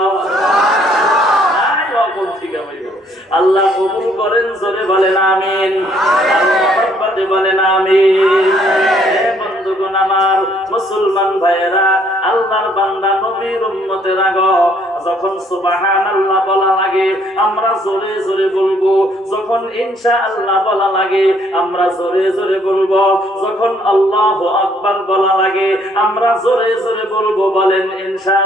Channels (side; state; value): both; normal; correlation 0.65